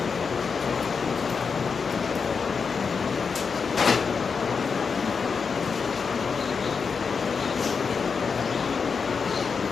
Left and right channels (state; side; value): quieter; right; 5.5 dB